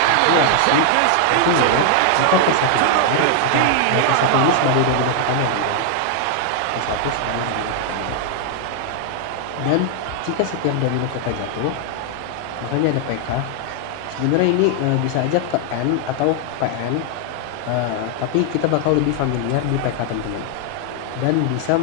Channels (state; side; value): different; both; correlation 0.00